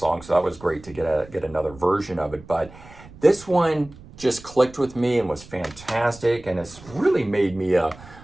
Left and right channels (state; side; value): noise; right; rumble, 20 dB below the sound